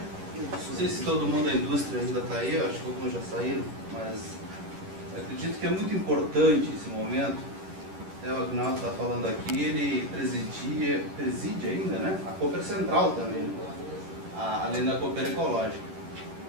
Não sei se todo mundo da indústria ainda está aí, eu acho que alguns já saíram, mas acredito que é muito importante esse momento. O Agnaldo está falando aqui, ele preside ainda, né? A Cooper Central também, além da Cooper Ecológica.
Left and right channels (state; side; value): late; left; 11 ms